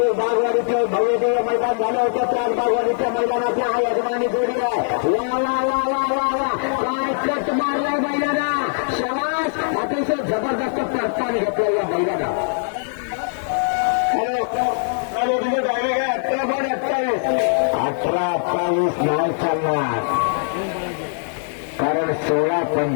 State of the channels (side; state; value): right; silent; digital silence